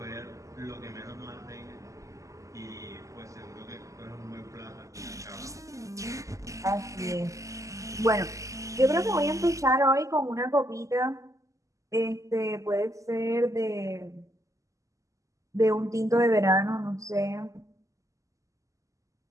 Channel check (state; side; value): late; left; 0.16 ms